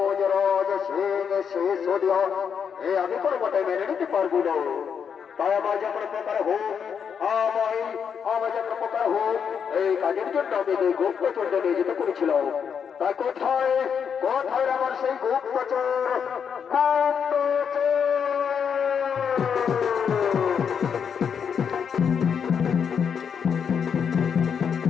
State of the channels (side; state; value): right; quieter; 7.1 dB